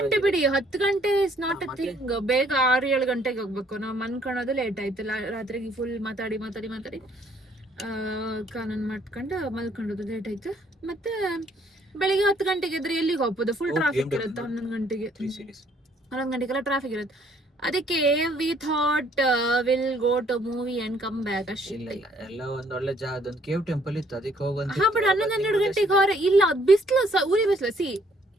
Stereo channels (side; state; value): both; normal; correlation 0.64